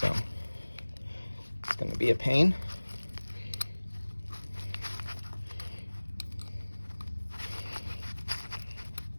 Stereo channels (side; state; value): both; inverted; correlation -1.00